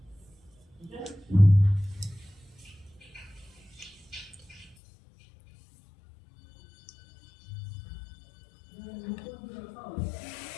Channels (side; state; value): right; drops out; at 4.8 s